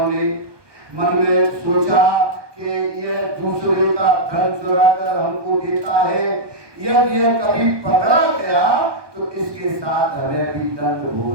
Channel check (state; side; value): late; left; 1.2 ms